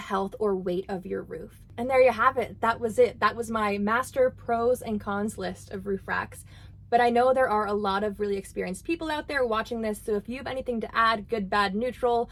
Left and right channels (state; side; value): identical; both; correlation 1.00